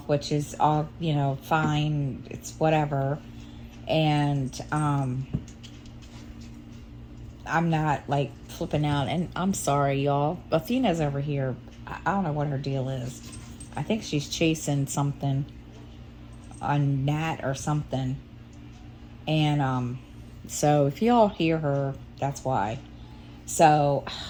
which is all, fine. It's whatever. And I'm not like flipping out, and I'm sorry, y'all. Athena's over here. I don't know what her deal is. I think she's chasing something, a gnat or something. And so if y'all hear her, that's why. So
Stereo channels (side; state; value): both; identical; correlation 1.00